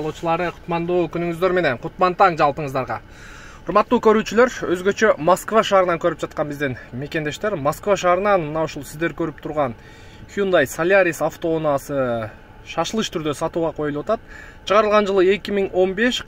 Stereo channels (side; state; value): both; identical; correlation 1.00